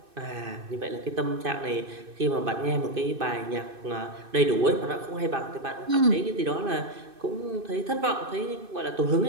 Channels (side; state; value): left; late; 2.6 ms